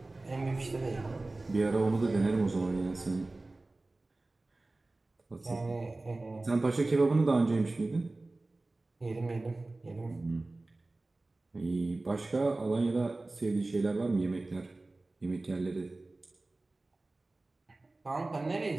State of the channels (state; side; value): quieter; left; 3.1 dB